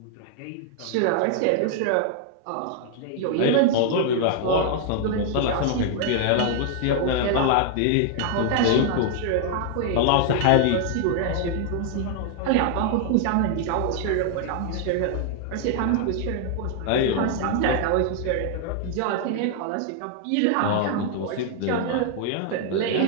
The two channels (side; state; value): both; different; correlation 0.00